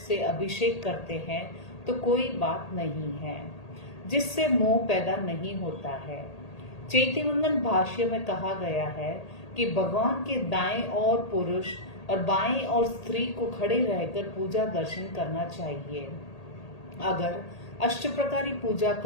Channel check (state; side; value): late; right; 1.8 ms